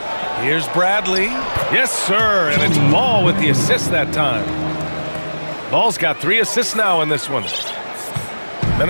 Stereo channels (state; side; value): inverted; both; correlation -1.00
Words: Here's Bradley. Yes, sir. And it's Ball with the assist that time. Ball's got 3 assists now in this one.